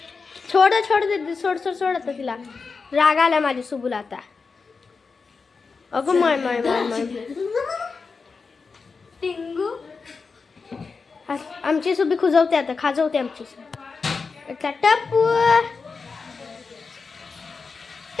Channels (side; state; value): right; quieter; 4.8 dB